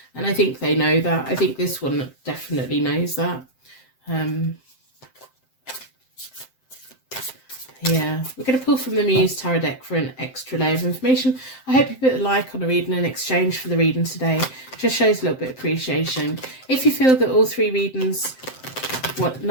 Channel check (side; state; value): right; late; 7.7 ms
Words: And I think they know that. I think this one definitely knows that. Yeah, we're going to pull from the Muse Tarot deck for an extra layer of information. I hope you put a like on the reading in exchange for the reading today. It just shows a little bit of appreciation. If you feel that all three readings,